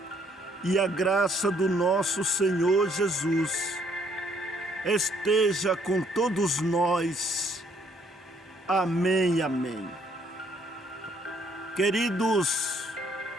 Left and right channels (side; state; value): both; normal; correlation 0.66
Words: e a graça do nosso Senhor Jesus esteja com todos nós. Amém, amém. Queridos